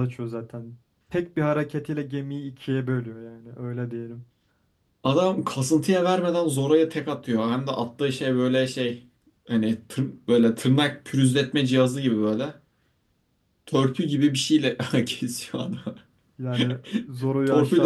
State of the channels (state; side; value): identical; both; correlation 1.00